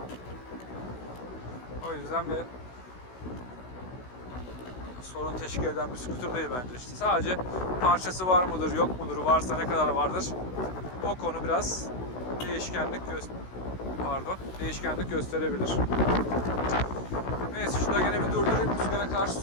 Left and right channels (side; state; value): right; late; 16 ms